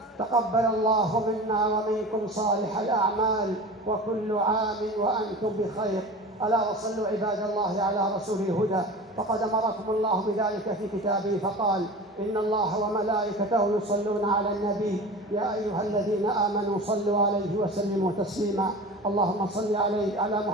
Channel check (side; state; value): both; normal; correlation 0.34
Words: تقبل الله منا ومنكم صالح الأعمال، وكل عام وأنتم بخير. ألا وصلوا عباد الله على رسول الهدى فقد أمركم الله بذلك في كتابه فقال: إن الله وملائكته يصلون على النبي يا أيها الذين آمنوا صلوا عليه وسلموا تسليما. اللهم صل على